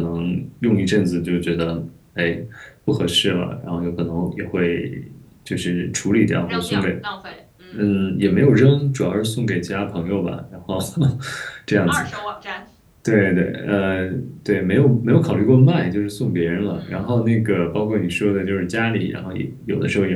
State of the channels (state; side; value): identical; both; correlation 1.00